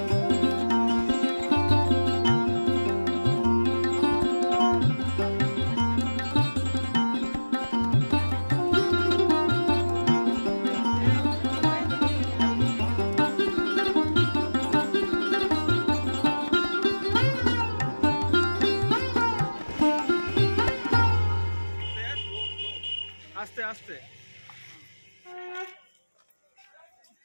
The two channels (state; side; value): inverted; both; correlation -1.00